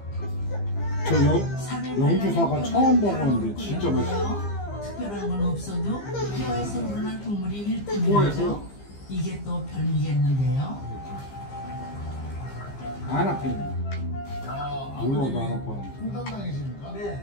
저 영주사가 처음 먹었는데 진짜 맛있어. 특별한 건 없어도 뼈에서 우러난 국물이 일품이죠. 뼈에서? 이게 또 별미겠는데요. 안 아프네. 물어도 안 아파. 풍담당이십니까?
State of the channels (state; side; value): late; right; 15 ms